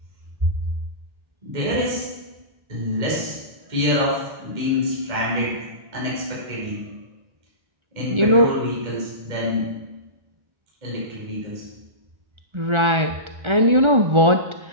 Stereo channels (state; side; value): late; left; 1.4 ms